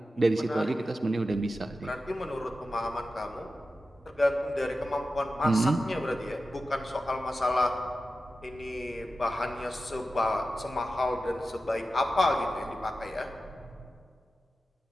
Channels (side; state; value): both; normal; correlation 0.93